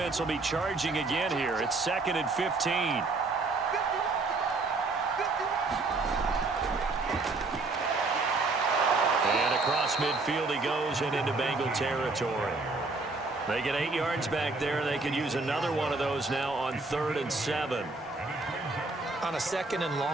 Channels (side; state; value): left; quieter; 3.6 dB